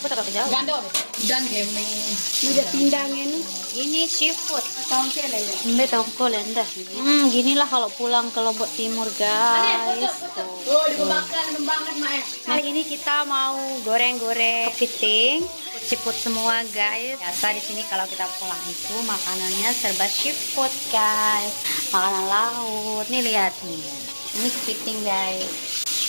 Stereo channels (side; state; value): both; inverted; correlation -1.00